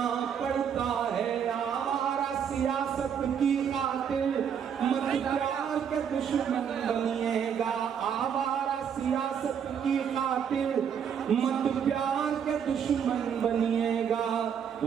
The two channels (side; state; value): left; quieter; 7.8 dB